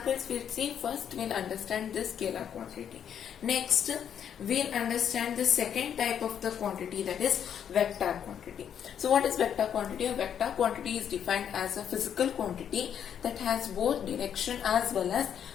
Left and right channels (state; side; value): quieter; right; 8.7 dB